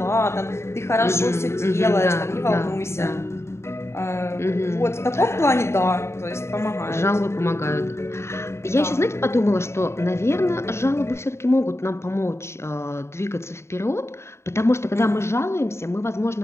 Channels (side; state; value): right; late; 0.13 ms